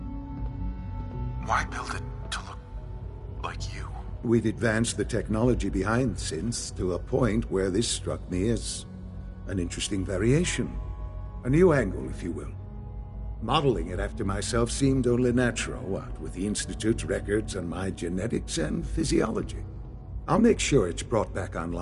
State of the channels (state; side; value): identical; both; correlation 1.00